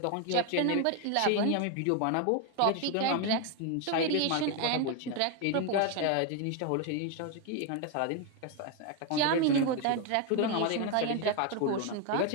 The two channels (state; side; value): different; both; correlation 0.01